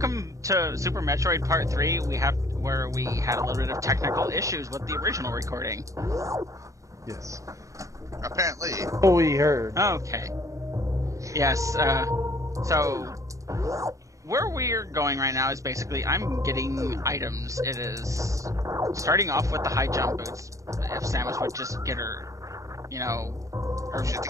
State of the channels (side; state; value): left; late; 0.16 ms